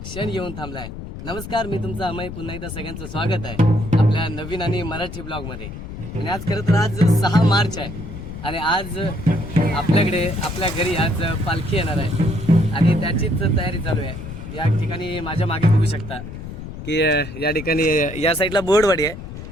येऊन थांबलाय. नमस्कार, मी तुमचा अमय. पुन्हा एकदा सगळ्यांचं स्वागत आहे आपल्या नवीन आणि मराठी ब्लॉगमध्ये. आणि आज खरं तर आज 6 मार्च आहे आणि आज आपल्याकडे आपल्या घरी आज पालखी येणार आहे आणि त्याचीच तयारी चालू आहे. या ठिकाणी माझ्या मागे बघू शकता की या ठिकाणी या साईडला बोर्डवाडी आहे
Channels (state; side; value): noise; left; rumble, 10 dB below the sound